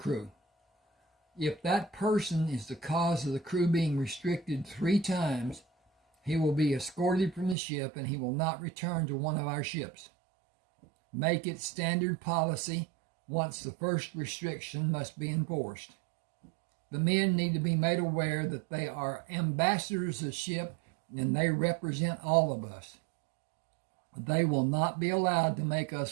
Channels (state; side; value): drops out; left; at 7.6 s